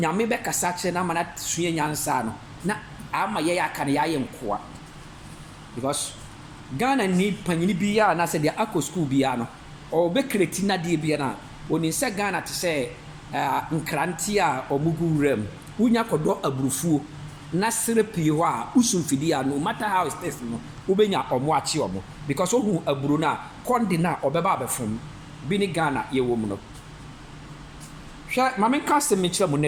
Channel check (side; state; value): both; identical; correlation 1.00